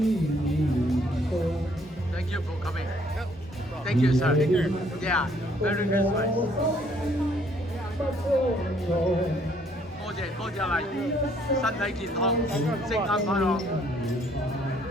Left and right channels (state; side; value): normal; both; correlation 0.65